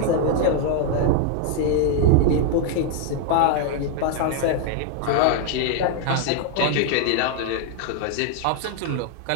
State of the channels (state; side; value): different; both; correlation 0.00